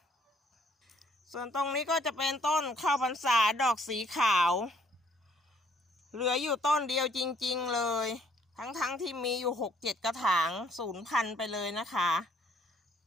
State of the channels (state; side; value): normal; both; correlation 0.64